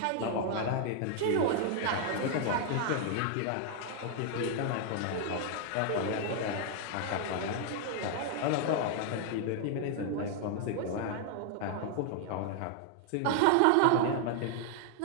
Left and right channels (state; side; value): different; both; correlation 0.00